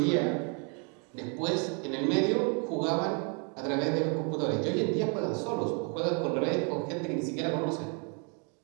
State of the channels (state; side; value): quieter; left; 36.9 dB